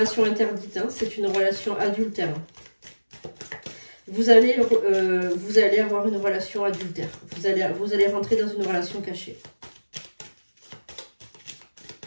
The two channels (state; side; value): inverted; both; correlation -1.00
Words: interdite, hein, c'est une relation adultère. Vous allez avoir une relation adultère. Vous allez rentrer dans une relation cachée.